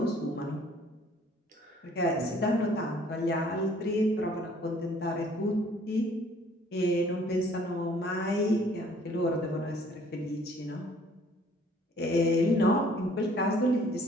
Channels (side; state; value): both; normal; correlation 0.58